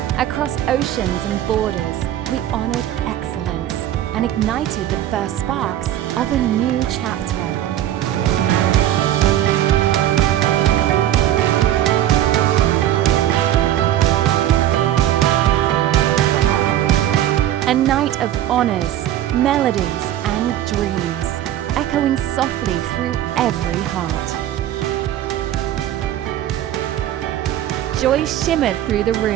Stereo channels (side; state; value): left; quieter; 12.2 dB